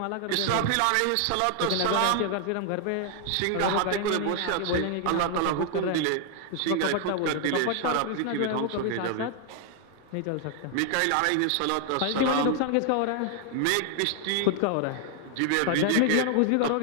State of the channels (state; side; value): different; both; correlation 0.00